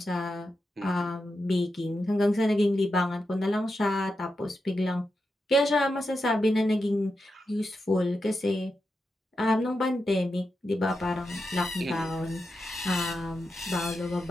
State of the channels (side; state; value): both; normal; correlation 0.88